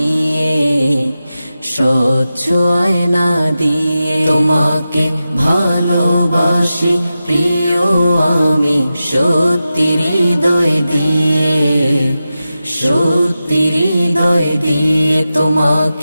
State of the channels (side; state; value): both; inverted; correlation -0.93